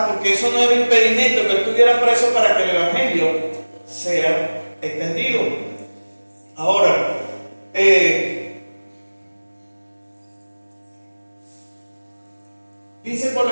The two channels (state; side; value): inverted; both; correlation -1.00